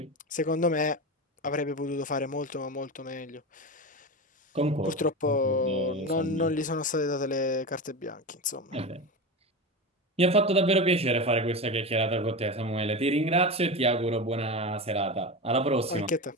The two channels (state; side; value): normal; both; correlation 0.22